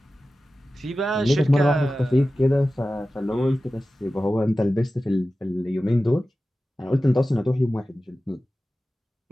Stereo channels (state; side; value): normal; both; correlation 0.95